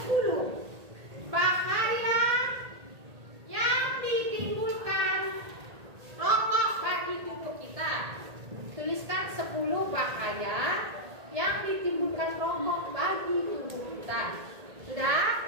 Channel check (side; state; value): left; late; 1.8 ms